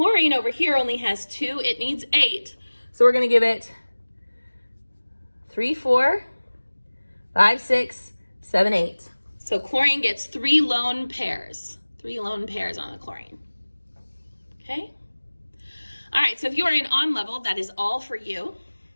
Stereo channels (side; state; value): both; inverted; correlation -1.00